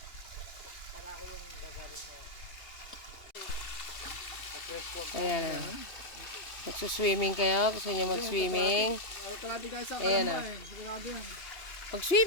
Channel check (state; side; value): late; right; 2.7 ms